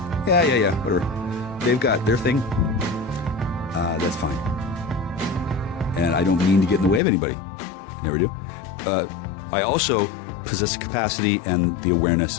Yeah, whatever. They've got their thing. That's fine. And I don't mean to get in the way of anybody. Never do. I also possess the capacity and the awareness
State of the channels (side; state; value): right; drops out; at 7.0 s